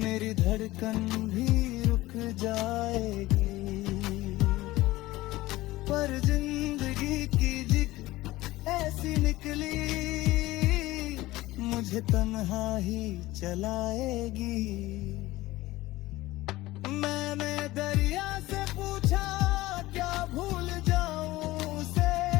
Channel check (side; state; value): right; quieter; 18.1 dB